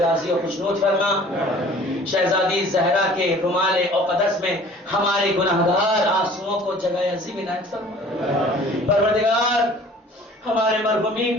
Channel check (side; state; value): both; normal; correlation 0.49